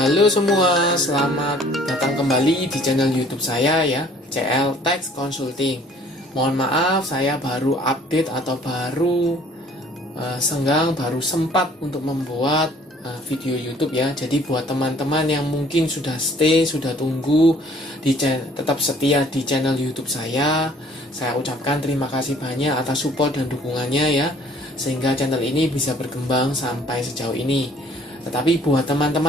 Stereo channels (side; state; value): both; normal; correlation 0.57